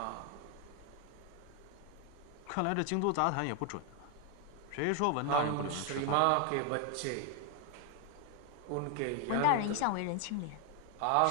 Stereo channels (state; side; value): different; both; correlation 0.01